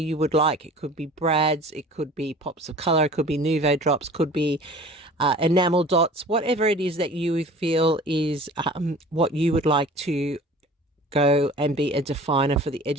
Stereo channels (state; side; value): normal; both; correlation 0.44